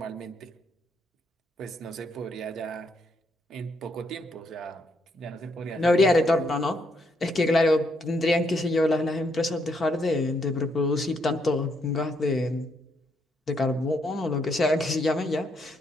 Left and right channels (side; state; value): both; normal; correlation 0.75